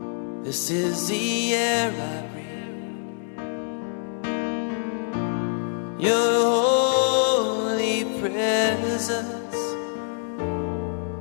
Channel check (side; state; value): right; silent; 62 dB below the other